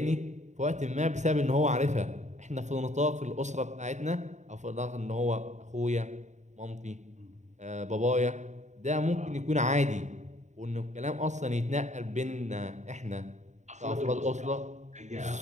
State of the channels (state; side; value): late; left; 0.34 ms